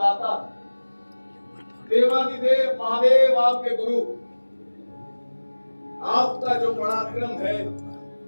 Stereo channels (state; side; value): inverted; both; correlation -1.00